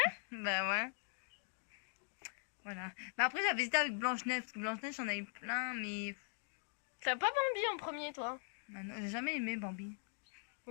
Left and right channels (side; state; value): right; silent; 50 dB below the other